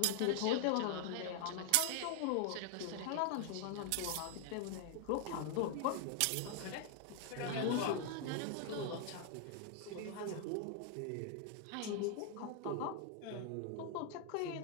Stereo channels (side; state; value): both; different; correlation 0.00